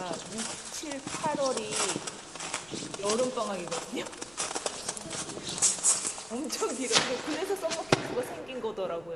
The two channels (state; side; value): noise; left; rumble, 24 dB below the sound